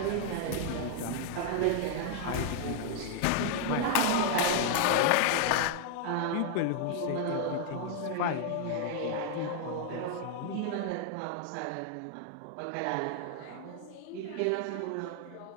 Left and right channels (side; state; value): both; different; correlation 0.00